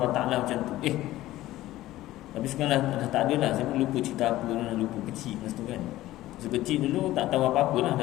Ta'ala macam tu. Tapi sekarang dah tak ada dah. Saya pun lupa cerita apa, dah lupa kecil masa tu kan. Masa kecil dulu tak tahu apa-apa lah,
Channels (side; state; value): right; quieter; 15.8 dB